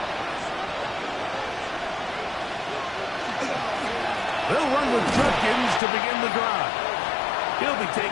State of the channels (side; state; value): right; drops out; at 5.8 s